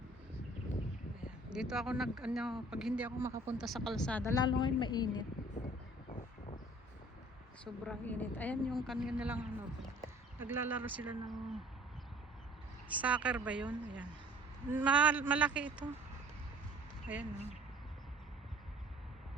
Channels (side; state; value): both; normal; correlation 0.51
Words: Dito ako pag hindi ako makapunta sa kalsada, lalo ngayon mainit. Sobrang init. Ayan yung kanina lang naglalaro sila ng soccer ba yun? Ayan. Malaki ito. Ayan.